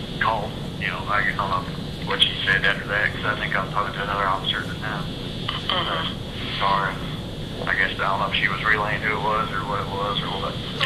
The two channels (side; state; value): both; identical; correlation 1.00